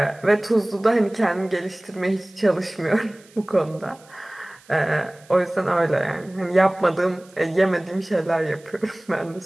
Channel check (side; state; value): right; noise; hiss, 27 dB below the sound